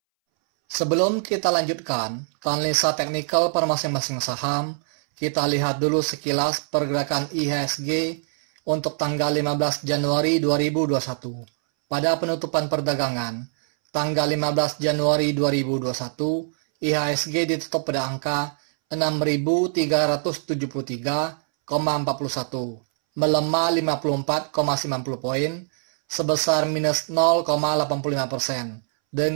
Sebelum kita lanjutkan ke analisa teknikal per masing-masing saham, kita lihat dulu sekilas pergerakan IHSG untuk tanggal 15 Januari 2021. Pada penutupan perdagangan, tanggal 15 Januari 2021, IHSG ditutup pada angka 6.373,41, melemah 54,90 poin, sebesar minus 0,85%,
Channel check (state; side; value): silent; left; 63 dB below the other